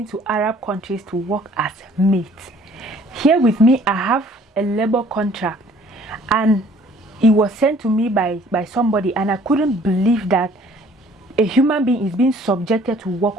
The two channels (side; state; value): both; normal; correlation 0.56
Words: to Arab countries to work as mates? Here with me, I have a labor contract, and it was sent to me by somebody, and I couldn't believe that a human being is being subjected to work